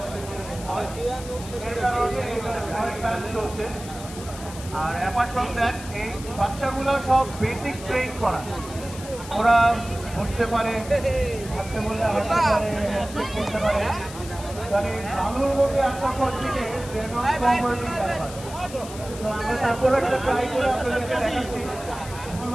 আর অ্যাপার্ট ফ্রম দ্যাট এই বাচ্চাগুলো সব বেসিক ট্রেন করা, ওরা বসতে পারে, হাঁটতে বললে হাঁটতে পারে, করতে পারে। মানে আলুর মধ্যে আশা করছি যে আমরা তারপরে একটা ট্রাই করে আপনাদেরকে দেখাচ্ছি। ভুল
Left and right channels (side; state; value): left; noise; hiss, 14 dB below the sound